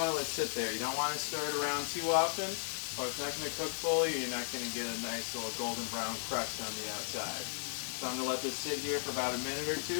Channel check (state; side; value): silent; right; 54 dB below the other